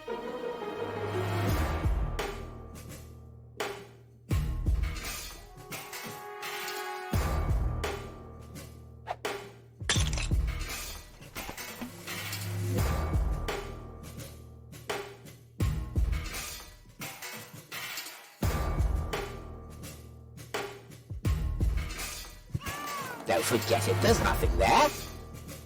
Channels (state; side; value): identical; both; correlation 1.00